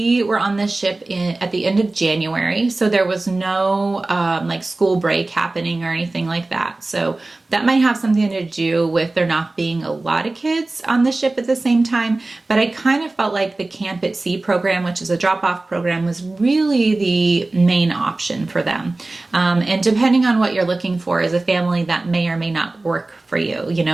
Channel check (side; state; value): left; quieter; 3.0 dB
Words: were on the ship at the end of January, so there was no like school break happening or anything like that. So that might have something to do with there not being a lot of kids on the ship at the same time. But I kind of felt like the Camp at Sea program, which is a drop-off program, was really the main option for them. And depending on what you're looking for as a family, that may or may not work for you. You know,